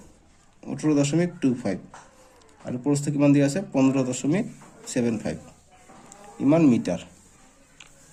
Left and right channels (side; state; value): both; identical; correlation 1.00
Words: 18.25 আৰু প্ৰস্থ কিমান দিয়া আছে 15.75 ইমান মিটাৰ